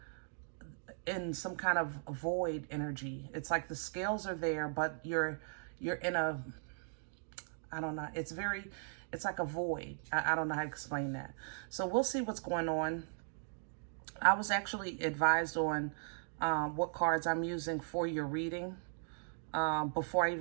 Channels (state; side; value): silent; left; digital silence